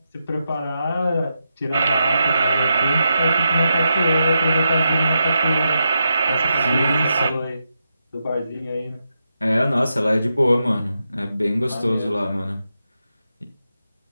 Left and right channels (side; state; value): both; inverted; correlation -0.86